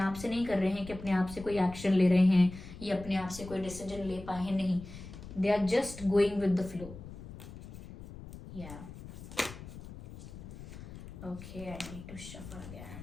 से नहीं कर रहे हैं कि अपने आप से कोई एक्शन ले रहे हैं या अपने आप से कोई डिसीजन ले पाए हैं, नहीं। They are just going with the flow. या okay, I need to shuffle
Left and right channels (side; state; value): left; noise; rumble, 14 dB below the sound